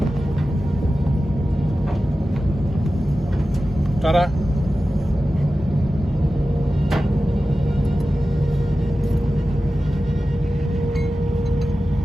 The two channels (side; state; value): both; normal; correlation 0.94